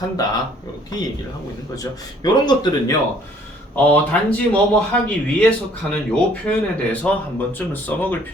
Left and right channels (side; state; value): both; normal; correlation 0.59